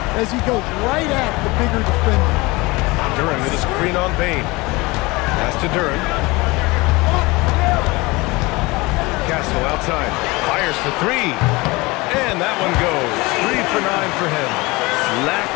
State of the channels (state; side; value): quieter; right; 23.3 dB